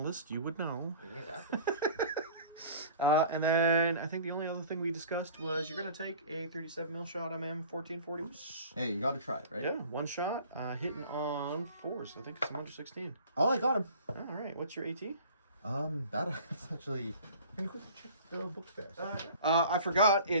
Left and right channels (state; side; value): inverted; both; correlation -0.44